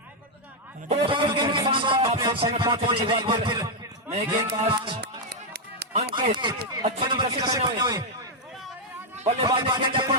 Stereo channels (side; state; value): both; normal; correlation -0.01